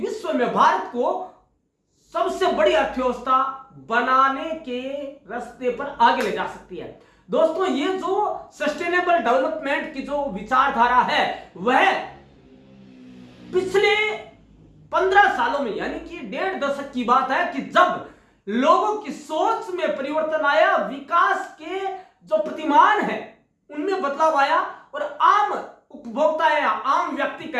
में भारत को सबसे बड़ी अर्थव्यवस्था बनाने के रास्ते पर आगे ले जा सकती है। दोस्तों, ये जो सस्टेनेबल डेवलपमेंट की जो विचारधारा है वह पिछले 15 सालों में, यानी कि 1.5 दशक की बात है, कि जब लोगों की सोच में परिवर्तन आया, विकास के जो प्रतिमान है उनमें बदलाव आया और आम उपभोक्ता या आम व्यक्ति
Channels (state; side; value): identical; both; correlation 1.00